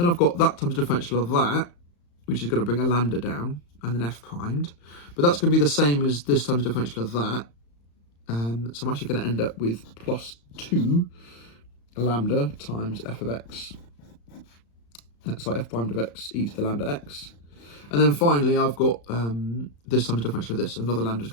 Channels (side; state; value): right; late; 35 ms